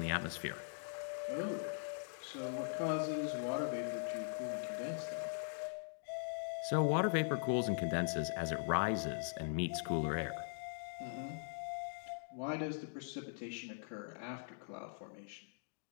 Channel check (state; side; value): silent; right; digital silence